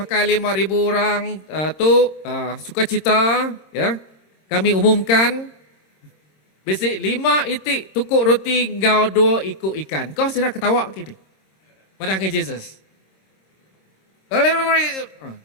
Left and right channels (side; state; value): right; late; 26 ms